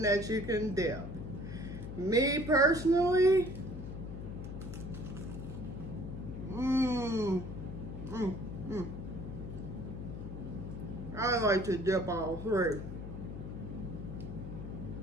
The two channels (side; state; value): left; noise; hum, 8 dB below the sound